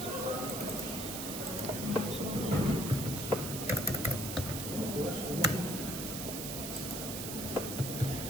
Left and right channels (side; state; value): right; noise; hiss, 5 dB below the sound